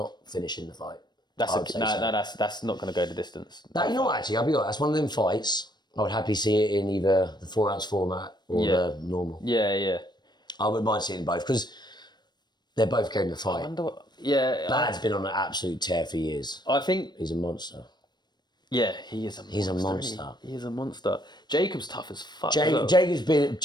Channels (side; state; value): right; late; 0.21 ms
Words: finishing the fight. That's not going to go the distance. You know what? Actually, I'll be honest. That's one of them fights. I would happily see it in either the 4-ounce format or the normal. Yeah. I wouldn't mind seeing both because they're both going to fight. Bad's been on an absolute tear for years. I think he's a monster. Yeah, he is a monster. He's a monster. He is a monster. Jacob's tough as fuck. Jacob's